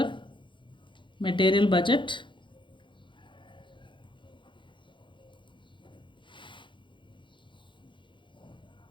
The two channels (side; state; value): right; late; 0.23 ms